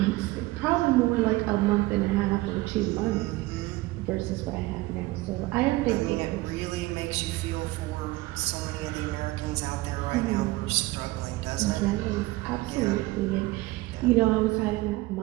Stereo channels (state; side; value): quieter; left; 19.9 dB